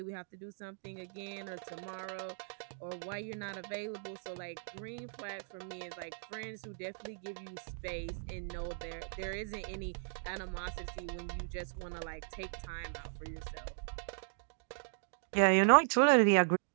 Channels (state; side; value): silent; left; digital silence